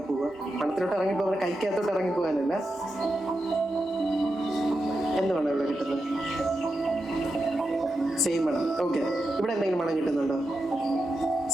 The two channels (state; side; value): normal; both; correlation 0.88